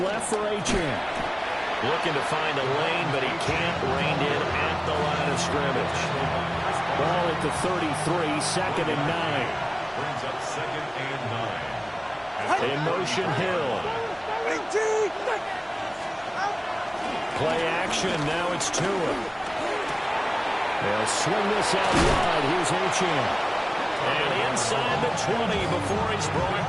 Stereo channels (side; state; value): both; identical; correlation 1.00